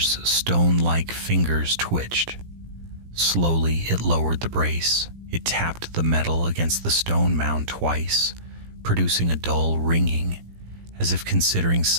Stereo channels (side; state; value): left; late; 17 ms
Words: stone-like fingers twitched. Slowly, it lowered the brace. It tapped the metal against the stone mound twice, producing a dull ringing, as if considering